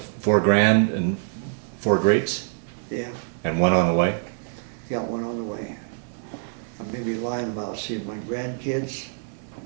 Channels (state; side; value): silent; left; digital silence